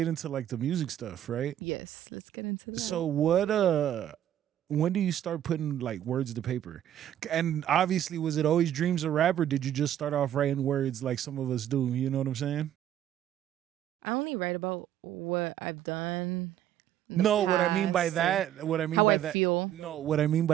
into like the music stuff, right? Yes, let's get into that. So when do you start putting like words to paper? And obviously, was it always dreams of rap, or did you just start off writing words like some of us do? You know what I'm saying? I only write about what I've done in the No, what I mean by past or that, what I mean how by I that, feel. no, what I mean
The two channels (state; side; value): quieter; left; 11.2 dB